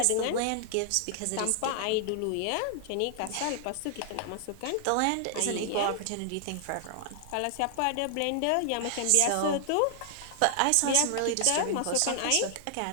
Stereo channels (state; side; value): different; both; correlation 0.00